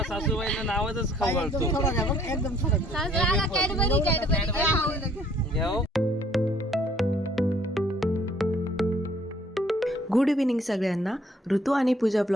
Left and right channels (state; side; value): normal; both; correlation 0.61